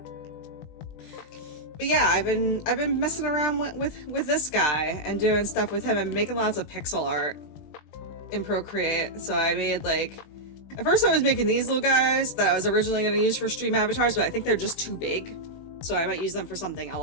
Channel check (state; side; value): late; right; 20 ms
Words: But yeah, I've been messing around with this guy and doing stuff with him and making lots of pixel art in Procreate. So I made like— at first I was making these little guys that I was originally going to use for stream avatars, but I think they're just too big. So I might use them for something